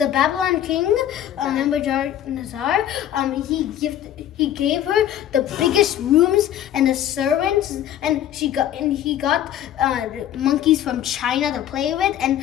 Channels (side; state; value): right; quieter; 11.2 dB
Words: Babylon king, Nebuchadnezzar, he gave her the biggest rooms and the servants, and he got monkeys from China to play with,